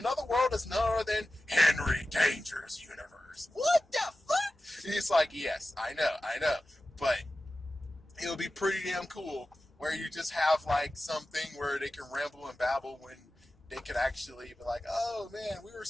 world is none other than Henry Danger's universe. What the fuck? And he's like, yes, I know. But it'll be pretty damn cool where you just have like something where they can ramble and babble when they could actually be like, oh man, we were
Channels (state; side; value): normal; both; correlation 0.94